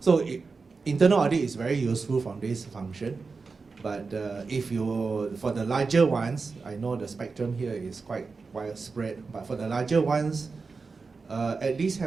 internal audit is very useful from this function. But for the larger ones, I know the spectrum here is quite widespread, but for the larger ones, at least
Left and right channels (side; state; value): left; quieter; 4.5 dB